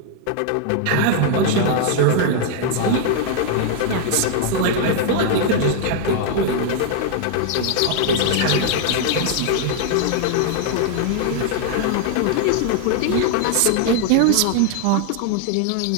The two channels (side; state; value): both; different; correlation 0.00